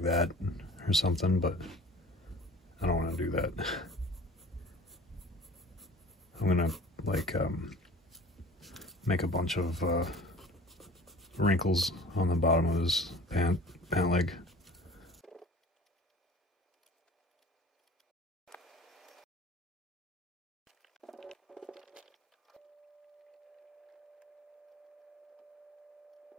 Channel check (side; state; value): both; normal; correlation 0.44